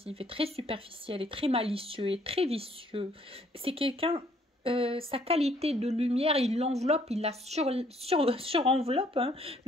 et très superficiels et très malicieux et très vicieux. C'est quelqu'un... sa qualité de lumière, il l'enveloppe, il la surenveloppe, hein,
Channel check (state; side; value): normal; both; correlation 0.64